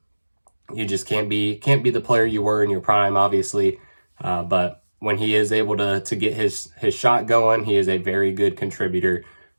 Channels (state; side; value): inverted; both; correlation -1.00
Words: you just can't be the player you were in your prime, obviously. But when he is able to get his shot going, he is a very good contributor.